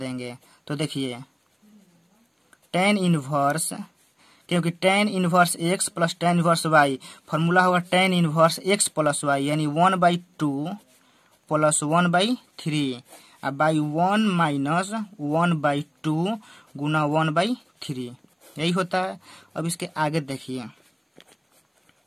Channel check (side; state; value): both; identical; correlation 1.00